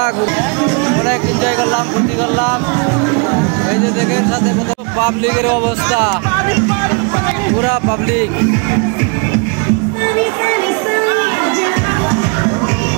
অনেক এনজয় করলাম ফুর্তি করলাম। এই যে দেখেন সাথে কত পাবলিকের অবস্থা, পুরা পাবলিক।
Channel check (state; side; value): quieter; left; 34.9 dB